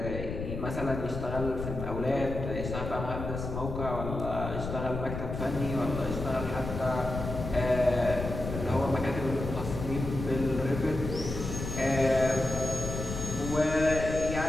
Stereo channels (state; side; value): noise; left; rumble, 6 dB below the sound